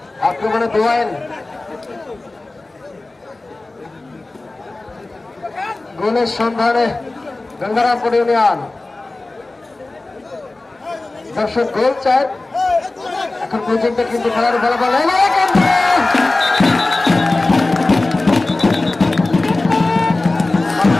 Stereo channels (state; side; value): quieter; right; 3.1 dB